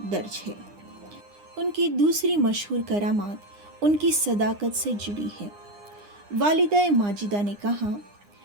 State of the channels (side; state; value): left; late; 9.8 ms